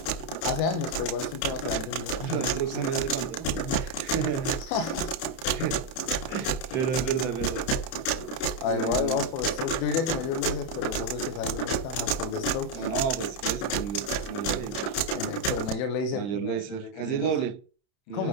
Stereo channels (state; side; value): late; right; 30 ms